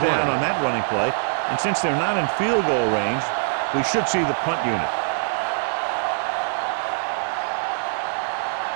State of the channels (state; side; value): silent; left; digital silence